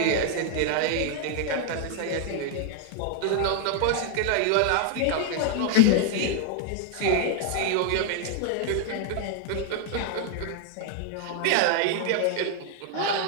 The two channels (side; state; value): both; different; correlation 0.00